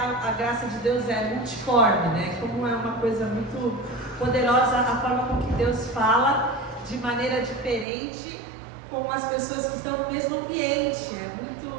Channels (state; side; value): drops out; left; at 7.9 s